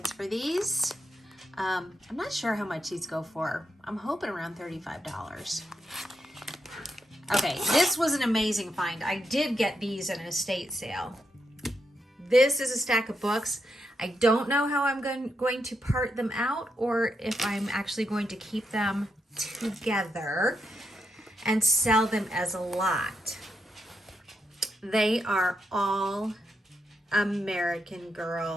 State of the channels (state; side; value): normal; both; correlation 0.83